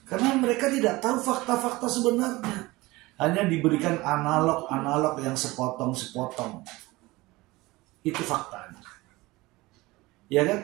Karena mereka tidak tahu fakta-fakta sebenarnya. Hanya diberikan analog-analog yang sepotong-sepotong. Itu faktanya. Ya kan?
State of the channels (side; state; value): left; quieter; 20.8 dB